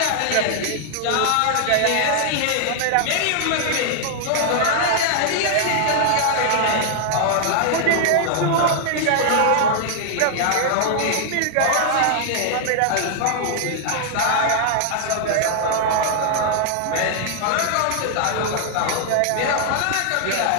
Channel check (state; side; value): different; both; correlation 0.00